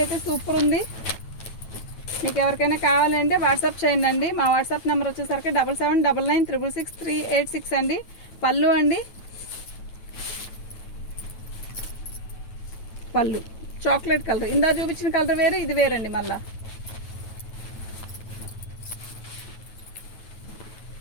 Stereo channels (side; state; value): right; late; 9.3 ms